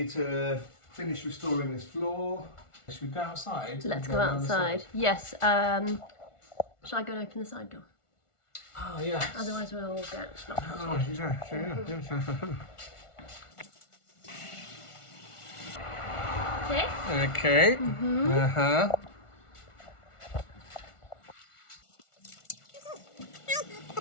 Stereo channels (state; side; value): late; right; 1.4 ms